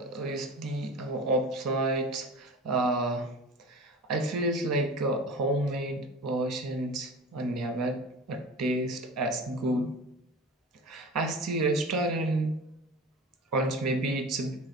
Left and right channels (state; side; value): normal; both; correlation 0.35